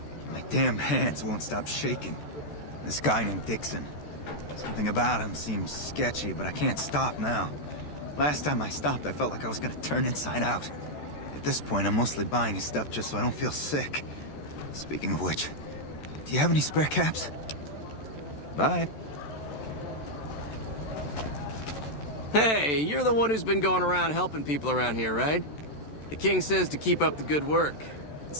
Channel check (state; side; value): late; right; 14 ms